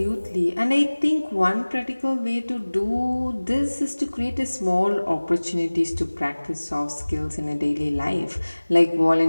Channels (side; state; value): both; inverted; correlation -1.00